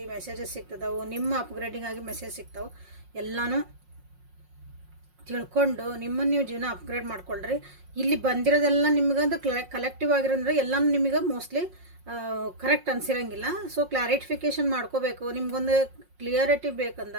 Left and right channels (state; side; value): late; left; 5.5 ms